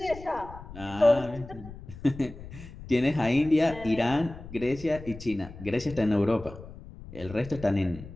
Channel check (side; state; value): left; noise; rumble, 15 dB below the sound